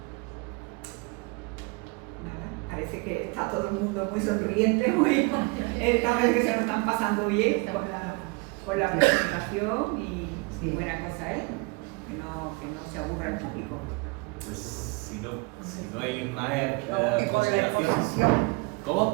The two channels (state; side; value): quieter; left; 27.7 dB